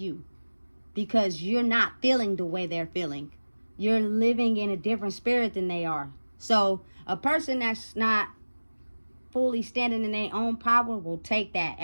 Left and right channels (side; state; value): both; inverted; correlation -1.00